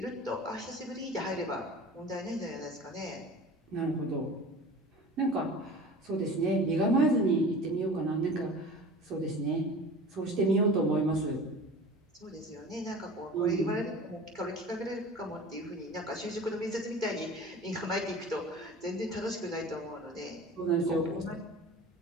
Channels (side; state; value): both; normal; correlation 0.39